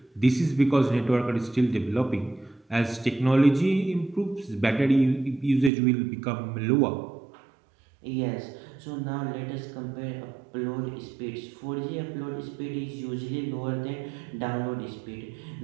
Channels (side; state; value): left; drops out; at 5.7 s